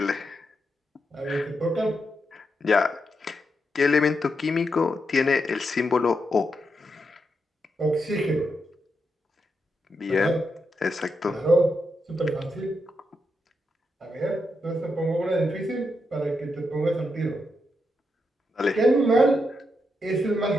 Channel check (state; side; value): normal; both; correlation 0.83